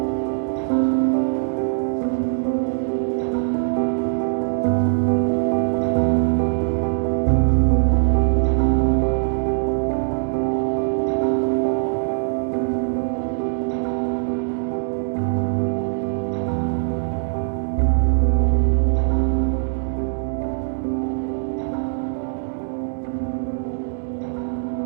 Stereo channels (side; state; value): left; silent; digital silence